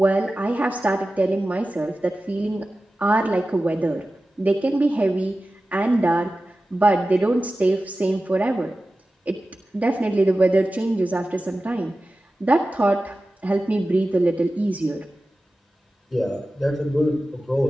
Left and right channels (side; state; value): both; normal; correlation 0.95